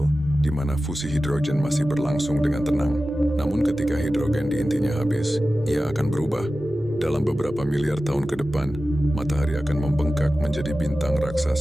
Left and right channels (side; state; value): both; normal; correlation 0.95